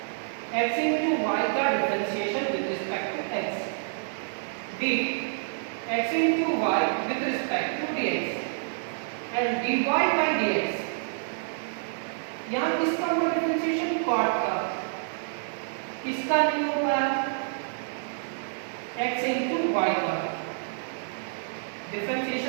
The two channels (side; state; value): left; silent; digital silence